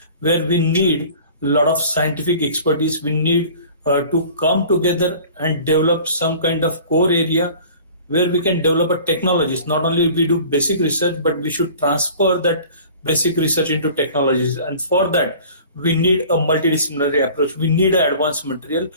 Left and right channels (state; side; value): inverted; both; correlation -0.45